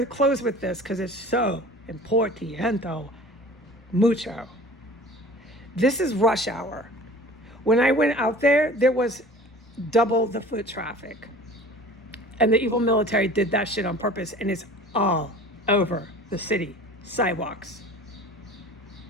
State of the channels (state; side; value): normal; both; correlation 0.43